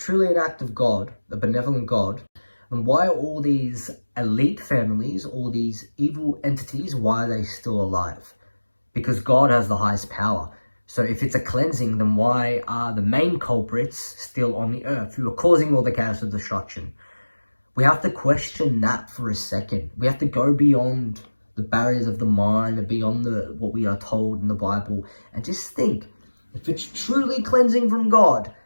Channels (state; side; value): inverted; both; correlation -1.00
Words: an act of God, a benevolent God, then why are all these elite families, all these evil entities, why are they still alive? Because God has the highest power. So if it's a cleansing, then why are the main culprits still on the earth, who are causing all the chaos and destruction? We have to question that for a second. We have to go beyond the barriers of the mind and beyond what we are told in the Bible, and just think, if it's truly cleansing from God,